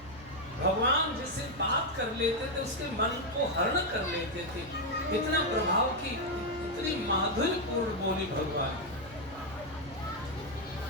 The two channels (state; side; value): noise; right; hum, 20 dB below the sound